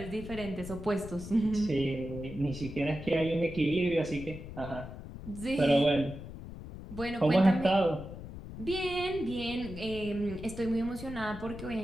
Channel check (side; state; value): left; noise; rumble, 11 dB below the sound